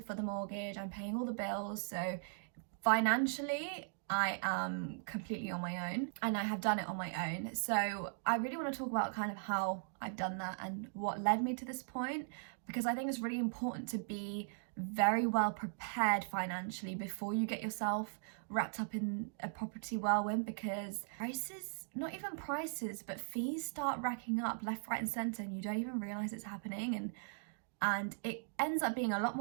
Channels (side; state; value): left; silent; digital silence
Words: the mortgage, I'm paying all the bills. So financially, I am completely on my own, and I have done it on my own. So I really want to talk about kind of how I've done that and what led me to this point, because I think it's really important to be very well prepared financially before you get yourself wrapped up in a property whirlwind, because prices, not even prices, but fees start racking up left, right and centre, and you don't even realise it's happening, and it ends up being a lot